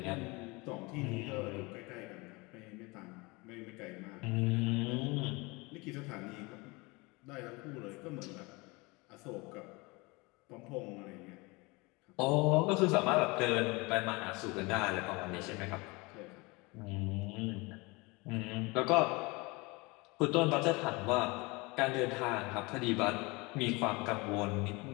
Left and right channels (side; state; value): right; quieter; 25.6 dB